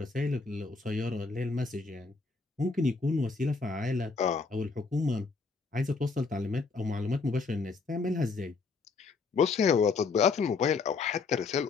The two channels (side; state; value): right; quieter; 4.4 dB